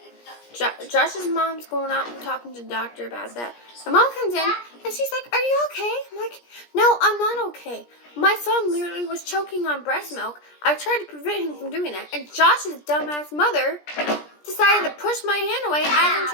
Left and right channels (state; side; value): late; right; 17 ms